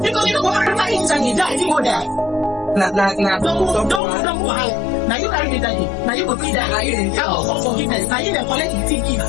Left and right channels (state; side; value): drops out; right; at 4.0 s